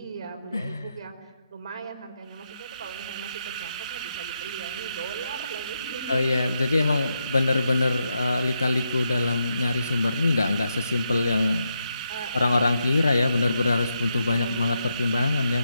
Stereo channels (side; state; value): both; inverted; correlation -0.83